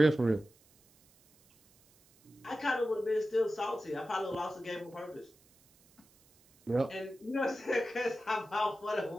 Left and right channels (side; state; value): right; noise; hiss, 30 dB below the sound